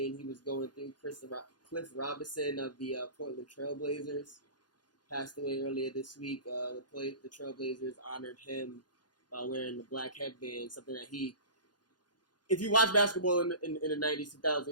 he was going through. Cliff Robinson of the Portland Trailblazers passed away earlier this week. The Trailblazers honored him by wearing the black headband, something that he. If you watch basketball in the 90s,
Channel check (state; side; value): late; right; 0.70 ms